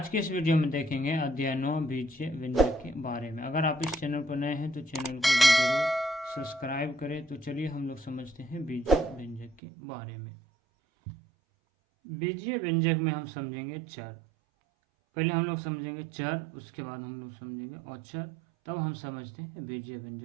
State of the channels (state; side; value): drops out; left; at 9.6 s